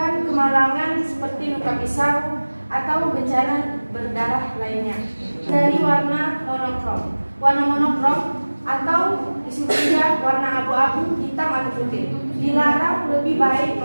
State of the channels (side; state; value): both; inverted; correlation -1.00